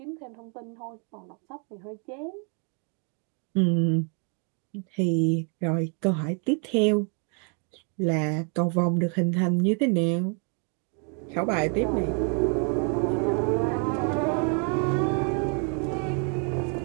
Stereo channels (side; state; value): left; quieter; 38.7 dB